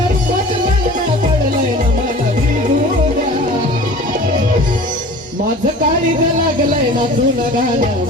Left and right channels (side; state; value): both; normal; correlation 0.42